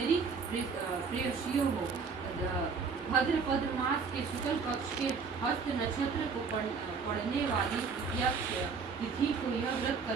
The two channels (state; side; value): quieter; left; 5.3 dB